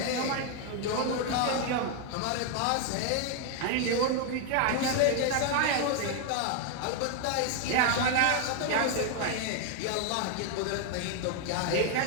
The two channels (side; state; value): both; different; correlation 0.00